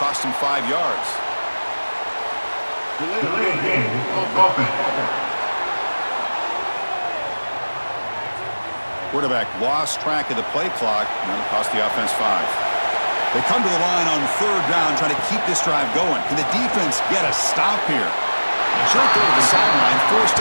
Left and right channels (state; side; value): inverted; both; correlation -1.00